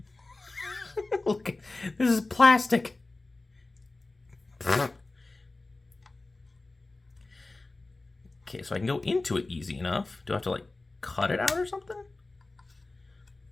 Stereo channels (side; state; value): right; quieter; 3.1 dB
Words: Look, this is plastic. Okay, so I can go into it easy enough. Do I have to, like, cut it out or something?